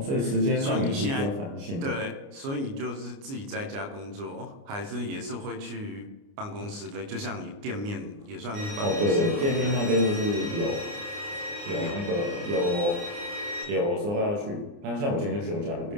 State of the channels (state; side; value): late; left; 29 ms